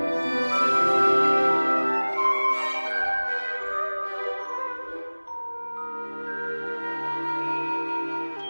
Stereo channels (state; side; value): inverted; both; correlation -1.00